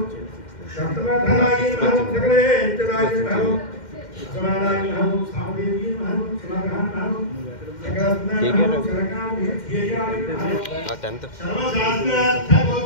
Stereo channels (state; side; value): late; right; 2.1 ms